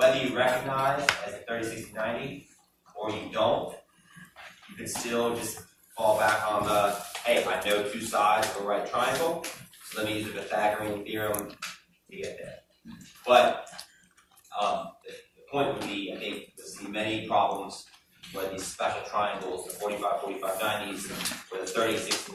you recognize as a 30, 60, 90, or you don't, you can still just fall back on the, hey, I know two sides of a right triangle, so let me use the Pythagorean theorem to get there. But the point would be, I think, you'll see many problems where these special triangles, the 45, 45, 90s, where the 30, 60,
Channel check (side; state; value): both; identical; correlation 1.00